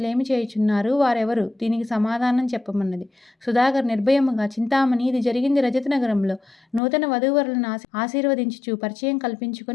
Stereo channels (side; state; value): right; drops out; at 6.8 s